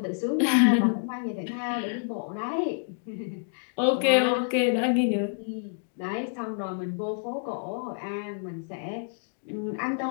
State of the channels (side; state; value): right; silent; digital silence